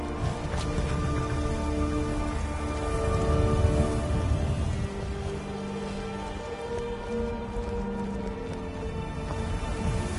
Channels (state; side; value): identical; both; correlation 1.00